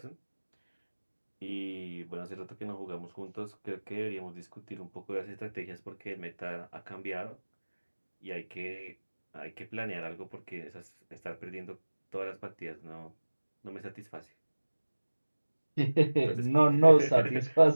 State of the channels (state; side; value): inverted; both; correlation -1.00